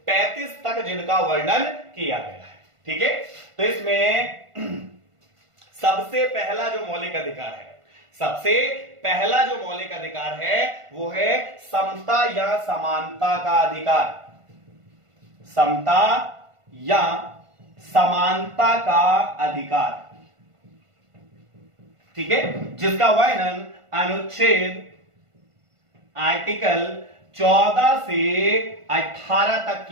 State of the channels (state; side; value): late; left; 1.5 ms